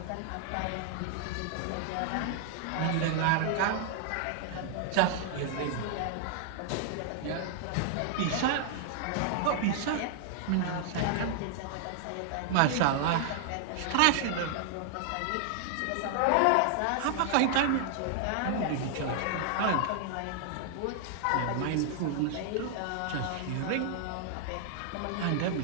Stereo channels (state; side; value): different; both; correlation -0.01